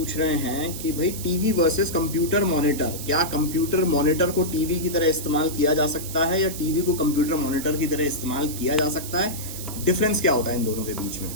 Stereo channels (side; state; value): right; noise; hiss, 10 dB below the sound